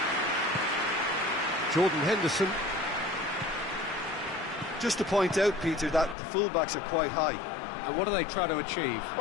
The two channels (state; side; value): drops out; right; at 6.2 s